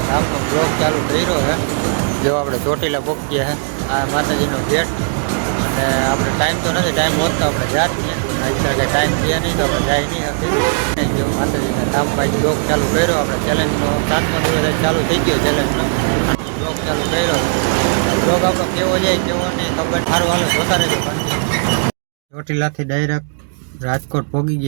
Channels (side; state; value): left; silent; digital silence